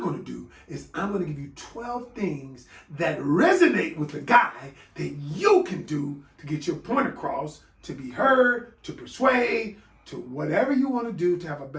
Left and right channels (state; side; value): identical; both; correlation 1.00